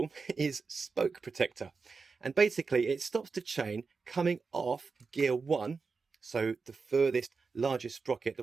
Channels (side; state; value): left; quieter; 4.7 dB